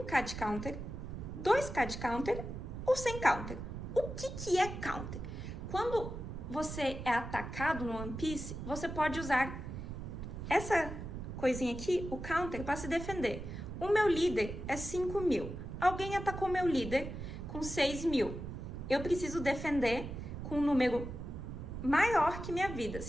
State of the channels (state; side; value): noise; right; rumble, 7 dB below the sound